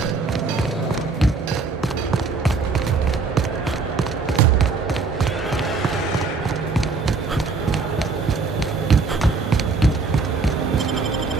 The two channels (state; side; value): quieter; left; 4.3 dB